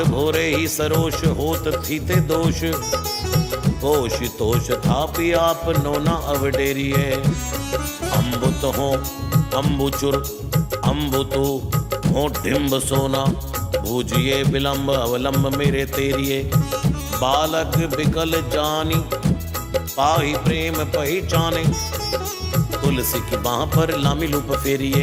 भोरे ही सरोष होत थीते दोष होश तोष थापी आप नोना अवडेरिए। अम्बुत हो अम्बुचुर अम्बुतु हो डिम्ब सोना भूजिए विलंब अवलंब मेरे तेरिए। बालक बिकल जानी पाही प्रेम पहचाने। तुलसी की बाह पर लामी लूप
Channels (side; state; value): both; identical; correlation 1.00